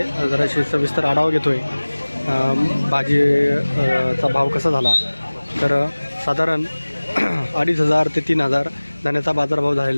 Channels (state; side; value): inverted; both; correlation -1.00